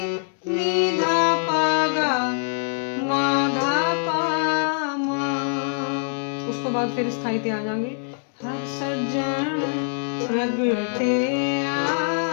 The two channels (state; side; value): silent; right; digital silence